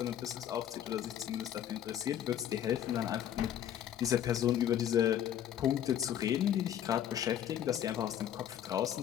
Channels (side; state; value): right; quieter; 10.5 dB